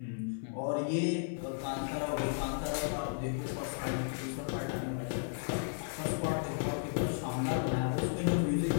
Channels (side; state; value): right; silent; 55 dB below the other